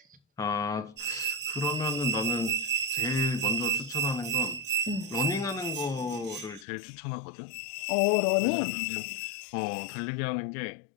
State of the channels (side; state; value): right; drops out; at 6.7 s